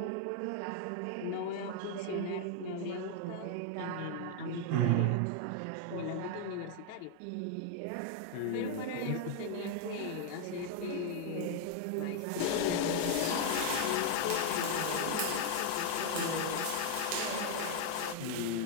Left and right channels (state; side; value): different; both; correlation 0.00